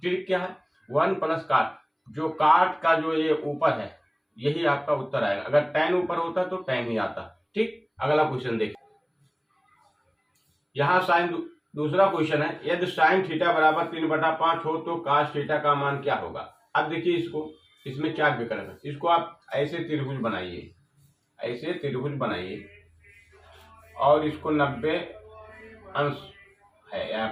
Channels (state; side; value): identical; both; correlation 1.00